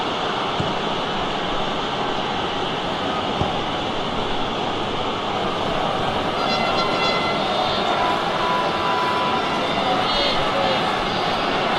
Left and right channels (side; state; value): both; identical; correlation 1.00